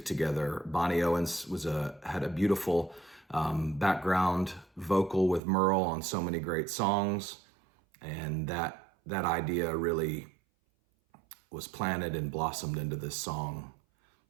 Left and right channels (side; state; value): left; drops out; at 5.4 s